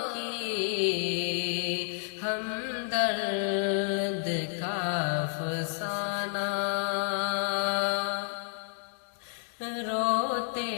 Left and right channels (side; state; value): right; silent; digital silence